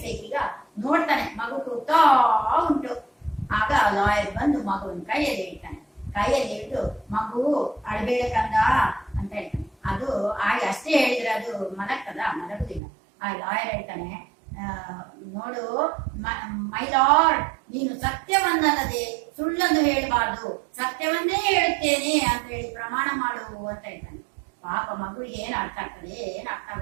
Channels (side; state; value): left; drops out; at 12.8 s